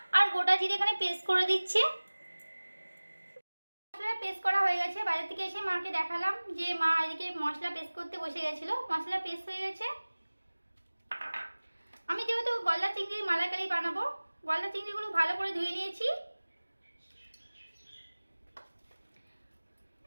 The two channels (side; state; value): both; inverted; correlation -1.00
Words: আর গোটা জিরে এখানে পেস্ট করে দিচ্ছে। মশলা পেস্ট করা হয়ে গেছে। বাজার থেকে এসে মাকে দেখালাম যে মা এদিকে মশলা পেস্ট করতে বসে গেছিলো। মশলা পেস্ট হয়ে গেছে। আমি যেহেতু গলদা চিংড়ির মালাইকারি বানাবো, গলদা চিংড়িগুলো ভালো করে ধুয়ে নিয়েছি।